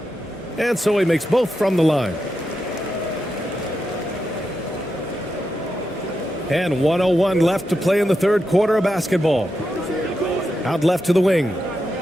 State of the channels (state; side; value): normal; both; correlation 0.87